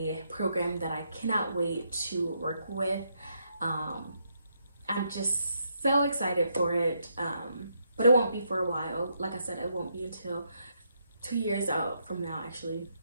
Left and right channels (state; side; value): inverted; both; correlation -0.77